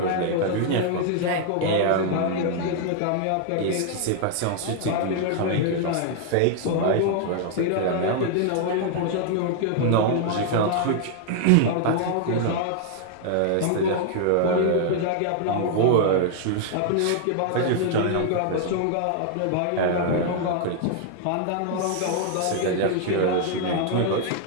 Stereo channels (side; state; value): both; different; correlation 0.00